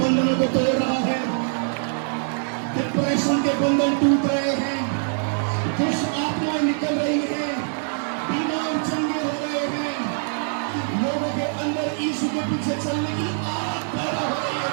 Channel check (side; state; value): left; silent; digital silence